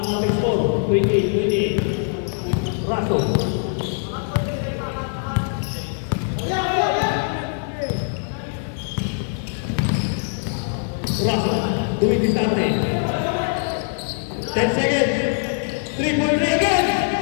ating score, 28. Raso. Doing this time. 10 seconds. 3-point again.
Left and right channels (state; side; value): silent; right; 64 dB below the other